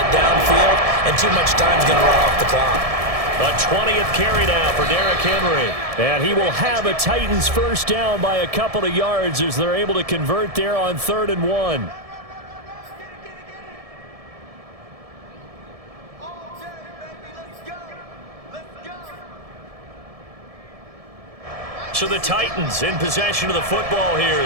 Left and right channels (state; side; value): late; left; 1.7 ms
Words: downfield, and too much time's going to run off the clock. A 20th carry now for Derrick Henry. And he will have a Titans first down by a couple of yards as they're able to convert there on 3rd and 1. So the Titans in possession of the football here